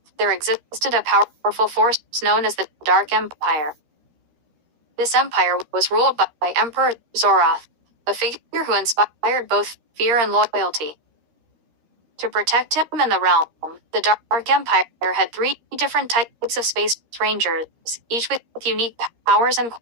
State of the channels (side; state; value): left; late; 13 ms